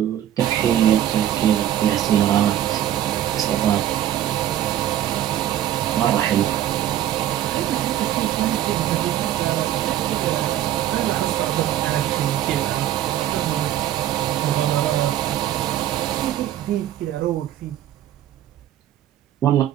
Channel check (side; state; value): left; quieter; 11.9 dB